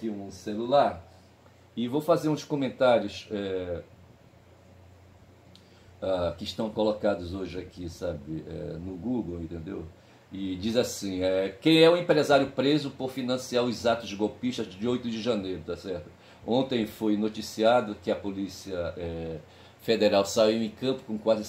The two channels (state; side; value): identical; both; correlation 1.00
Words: um celular e vou fazer uns comentários que estão colocados hoje aqui, sabe, no Google, entendeu? E diz assim, quem é o empresário preso por financiar os atos golpistas de 8 de janeiro, tá certo? Ontem foi noticiado que a Polícia Federal saiu em campo com quase